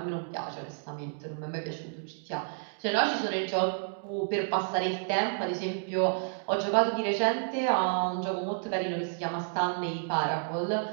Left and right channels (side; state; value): left; silent; digital silence